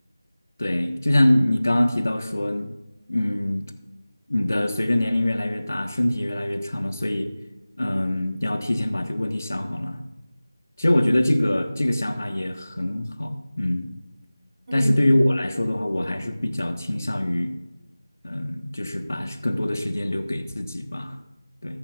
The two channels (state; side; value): inverted; both; correlation -0.98